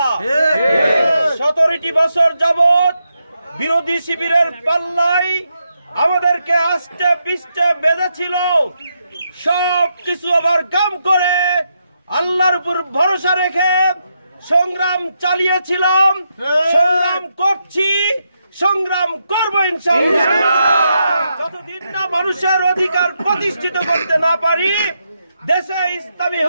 17টি বছর যাবত বিরোধী শিবিরের পাল্লাই আমাদেরকে আস্তে পিষ্টে বেঁধেছিল। সব কিছু ওভারকাম করে আল্লাহর উপর ভরসা রেখে সংগ্রাম চালিয়েছিলাম, সংগ্রাম করছি, সংগ্রাম করবো ইনশাআল্লাহ। যতদিন না মানুষের অধিকার প্রতিষ্ঠিত করতে না পারি, দেশে ইসলামী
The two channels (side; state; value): both; inverted; correlation -0.82